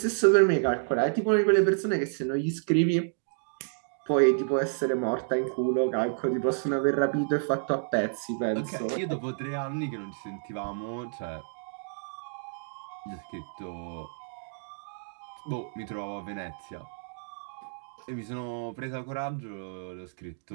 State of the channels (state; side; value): silent; left; digital silence